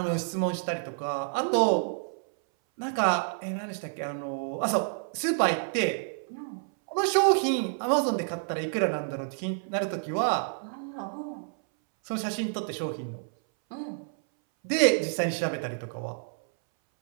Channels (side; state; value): left; silent; 59 dB below the other